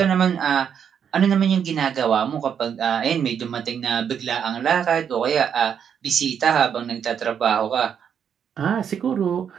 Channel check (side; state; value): left; quieter; 8.0 dB